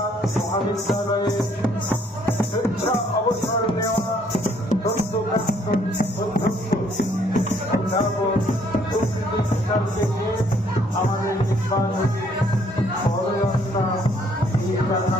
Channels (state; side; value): normal; both; correlation 0.65